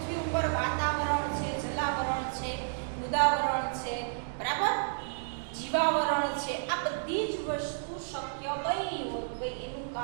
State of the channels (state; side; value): silent; left; digital silence